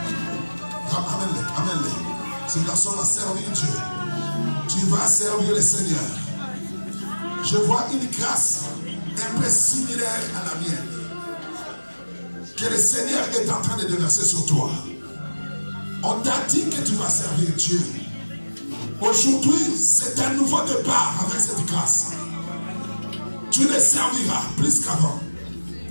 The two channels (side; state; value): both; inverted; correlation -1.00